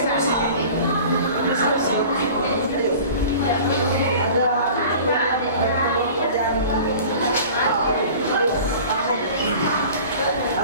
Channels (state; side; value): inverted; both; correlation -0.42